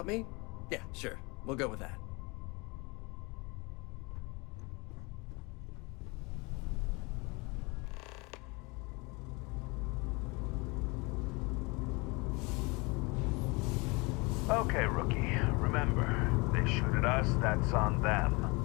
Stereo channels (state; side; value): quieter; right; 27.2 dB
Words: me? Yeah, sure. We'll go with that. Okay, rookie. Remember, they shoot at us, that's on